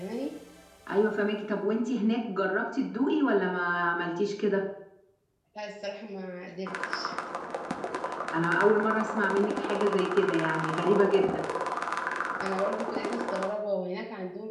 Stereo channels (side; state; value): both; identical; correlation 1.00